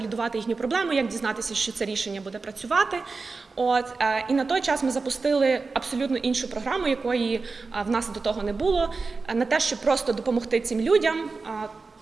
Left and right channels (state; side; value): quieter; left; 4.2 dB